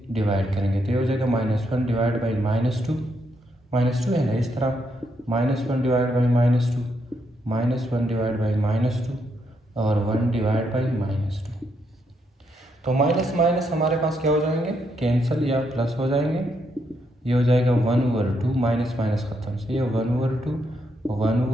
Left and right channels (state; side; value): normal; both; correlation 0.77